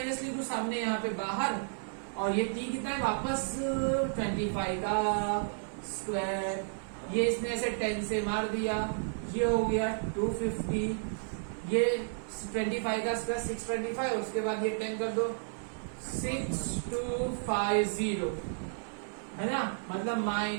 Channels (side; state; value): left; silent; 56 dB below the other